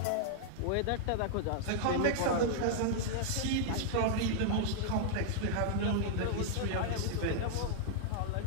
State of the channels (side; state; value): both; different; correlation -0.01